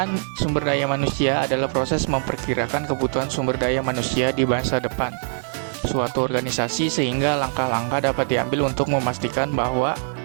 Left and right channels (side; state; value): left; silent; digital silence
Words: sumber daya manusia adalah proses memperkirakan kebutuhan sumber daya manusia di masa depan suatu organisasi sehingga langkah-langkah dapat diambil untuk memastikan bahwa